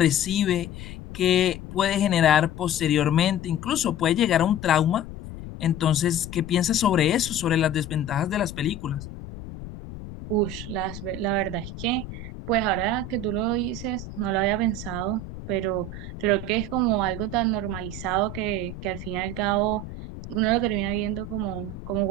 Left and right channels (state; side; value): noise; left; rumble, 11 dB below the sound